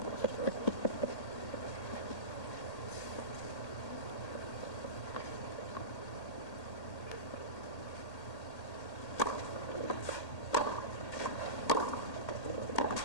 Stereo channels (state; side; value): late; right; 1.8 ms